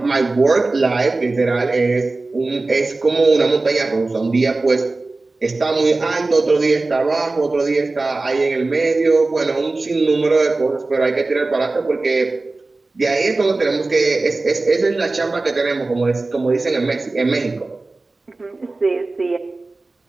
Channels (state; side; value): quieter; left; 3.3 dB